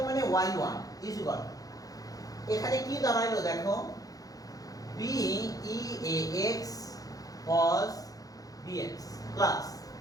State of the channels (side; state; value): right; late; 0.17 ms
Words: মানে y1 ইজ ইকুয়াল, এখানে কি দাঁড়ালো দেখো, b eax cos bx plus